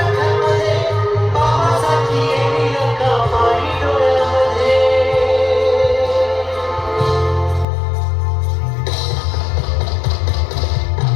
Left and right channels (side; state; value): right; drops out; at 7.7 s